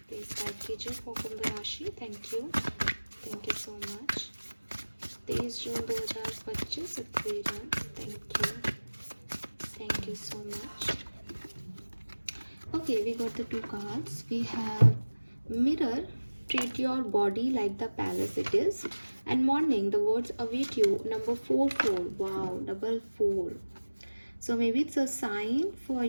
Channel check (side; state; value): both; inverted; correlation -1.00